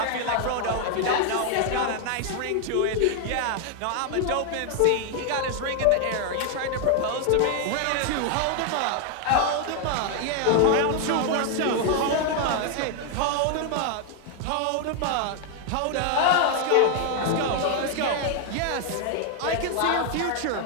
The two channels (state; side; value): different; both; correlation 0.00